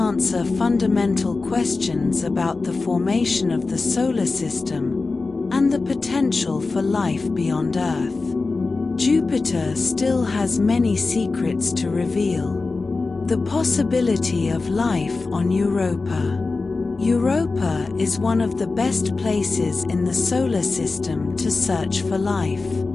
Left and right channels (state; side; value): quieter; right; 3.8 dB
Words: fundamental questions about the formation of the solar system and the potential for life beyond Earth. Jupiter still has many secrets to reveal. The possibility of life on Europa. Europa is one of the best places in the solar system to search for life.